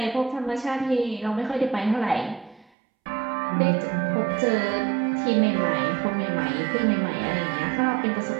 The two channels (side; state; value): left; drops out; at 2.7 s